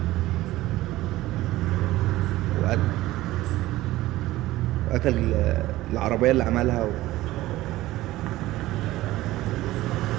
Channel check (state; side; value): quieter; left; 16.7 dB